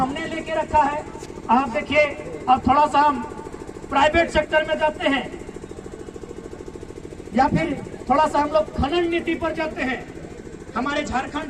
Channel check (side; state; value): both; identical; correlation 1.00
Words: लेके रखा है? आप देखिए, अब थोड़ा सा हम प्राइवेट सेक्टर में जाते हैं, या फिर थोड़ा सा हम लोग खनन नीति पर जाते हैं। हमारे